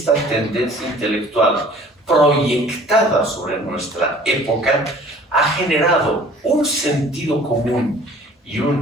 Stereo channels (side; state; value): both; normal; correlation 0.50